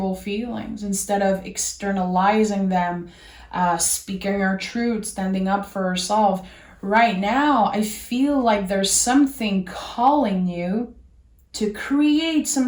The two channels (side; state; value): both; identical; correlation 1.00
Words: feelings, instead of externalizing them, speaking our truth, standing up for ourselves. Right now, I feel like there's something calling you to create some